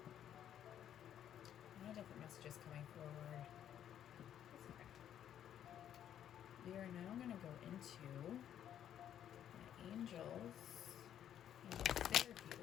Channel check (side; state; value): right; quieter; 10.2 dB